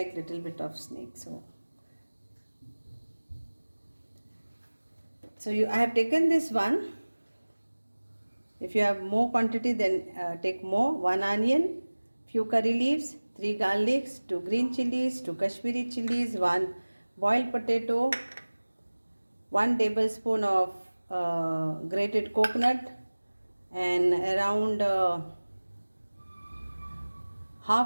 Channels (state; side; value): inverted; both; correlation -1.00